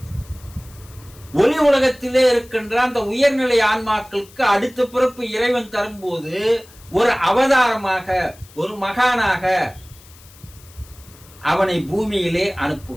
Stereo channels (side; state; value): left; noise; hiss, 24 dB below the sound